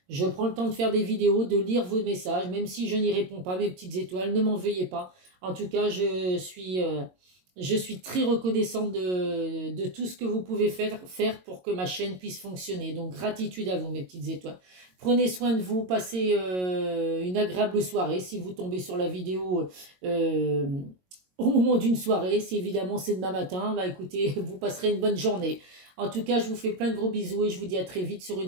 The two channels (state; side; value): late; left; 22 ms